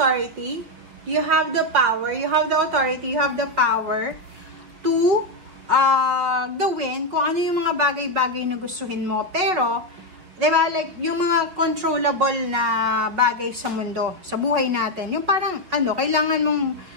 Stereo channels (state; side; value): late; left; 5.3 ms